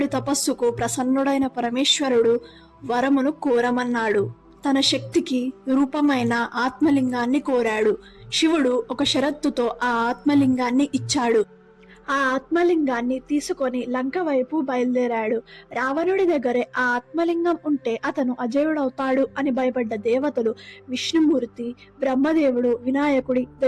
తపస్సుకు ప్రసన్నుడైన పరమేశ్వరుడు వరమును కోరమన్నాడు. తన శక్తికి రూపమైన ఆత్మలింగాన్ని కోరాడు. శివుడు ఒక షరతుతో ఆ ఆత్మలింగాన్ని ఇచ్చాడు. ఆ ఆత్మలింగాన్ని తీసుకొని లంక వైపు బయలుదేరాడు. రావణుడి దగ్గరే ఆ ఆత్మలింగం ఉంటే అతను అజేయుడవుతాడు అని భయపడ్డ దేవతలు విష్ణుమూర్తి, బ్రహ్మదేవుడు, వినాయకుడి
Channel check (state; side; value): identical; both; correlation 1.00